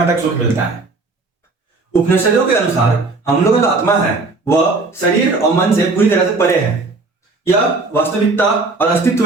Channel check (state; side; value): quieter; left; 3.6 dB